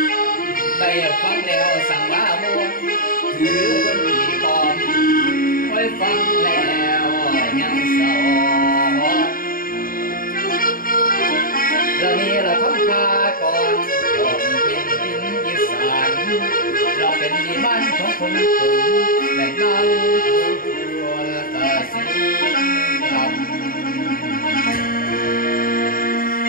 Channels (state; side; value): late; right; 0.41 ms